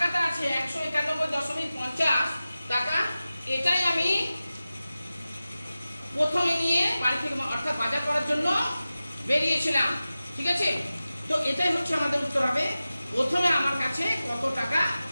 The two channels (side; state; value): both; inverted; correlation -0.95